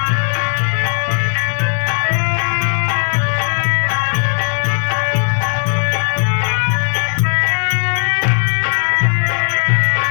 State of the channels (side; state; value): right; silent; 61 dB below the other